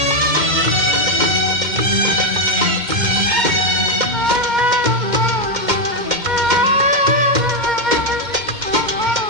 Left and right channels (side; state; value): left; late; 2.1 ms